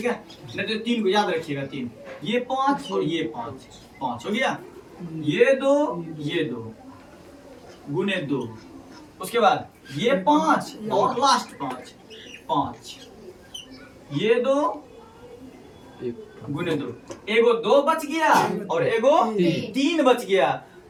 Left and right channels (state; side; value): identical; both; correlation 1.00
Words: है। नहीं तो 3 को याद रखिएगा, 3, ये 5 और ये 5, 5 हो गया। ये 2 गुने 2, उसके बाद ये 5 और लास्ट 5, 5, ये 2 गुने 2, एगो 2 बच गया और एगो 3 बच गया।